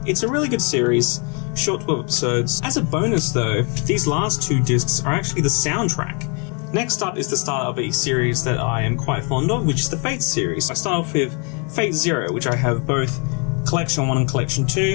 It's a really good series, short 12 episodes. As a bonus though, these last 2 discs are actually the soundtrack. Next up is the start of a series that I am quite fond of, which is the Fate series. I start off with Fate Zero, which I have both Collection 1 and Collection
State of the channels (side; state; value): right; quieter; 35.6 dB